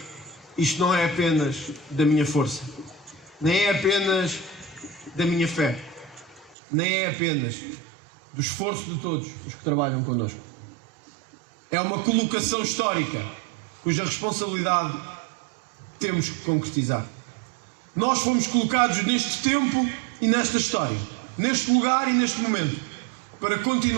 isto não é apenas da minha força, nem é apenas da minha fé, nem é apenas do esforço de todos os que trabalham connosco. É uma colocação histórica cuja responsabilidade temos que concretizar. Nós fomos colocados neste tempo e nesta história, neste lugar e neste momento, para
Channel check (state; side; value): drops out; left; at 6.6 s